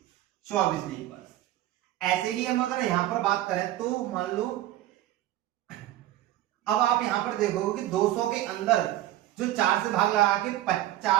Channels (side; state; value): left; quieter; 14.3 dB